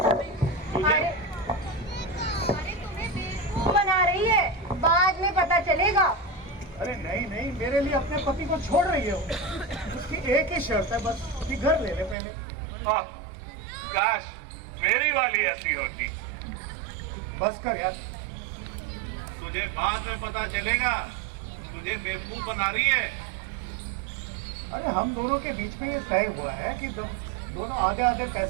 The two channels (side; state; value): left; drops out; at 12.2 s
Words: अरे तुम्हें बेवकूफ बना रही है, बाद में पता चलेगा। अरे नहीं नहीं, मेरे लिए अपने पति को छोड़ रही है वो। उसकी एक ही शर्त है बस कि घर ले ले पहले। आह, काश मेरी वाली ऐसी होती। बस कर यार। तुझे बाद में पता चलेगा, तुझे बेवकूफ बना रही है। अरे हम दोनों के बीच में ये तय हुआ है कि दोनों आधे आधे